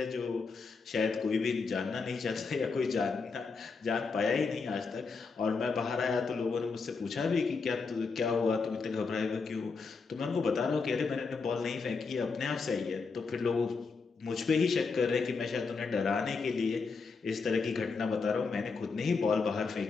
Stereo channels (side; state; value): right; quieter; 4.7 dB